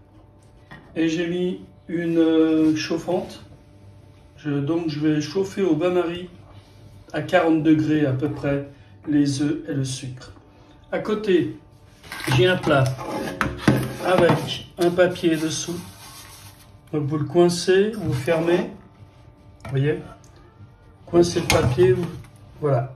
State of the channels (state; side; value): identical; both; correlation 1.00